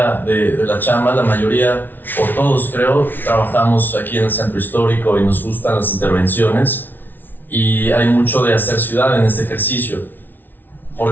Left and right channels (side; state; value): right; late; 0.091 ms